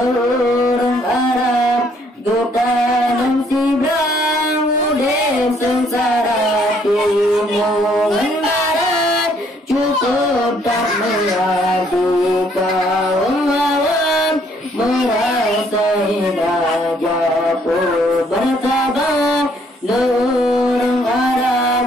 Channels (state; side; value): normal; both; correlation 0.66